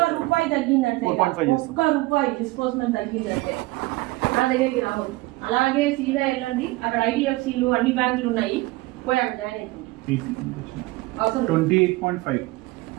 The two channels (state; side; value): quieter; left; 21.0 dB